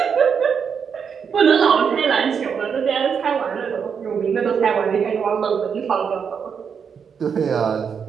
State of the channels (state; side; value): quieter; left; 6.7 dB